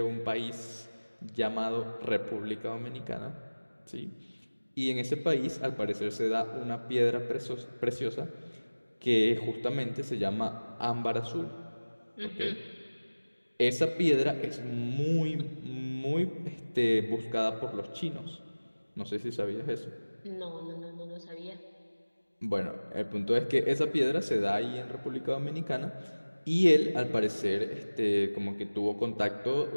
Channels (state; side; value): inverted; both; correlation -1.00